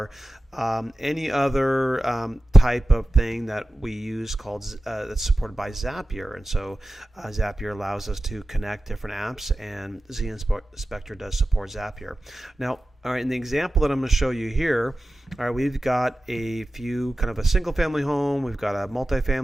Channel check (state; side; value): normal; both; correlation 0.94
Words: any other type of thing that we use called that's supported by Zapier. And so Zapier allows us to connect different apps, and zInspector does support Zapier. Now, all right, in the example that I'm going to show you here, all right, we've got a few kind of a single family home, we've got a